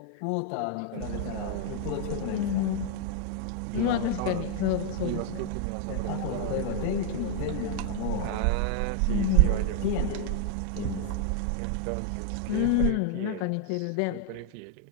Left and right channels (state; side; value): different; both; correlation 0.00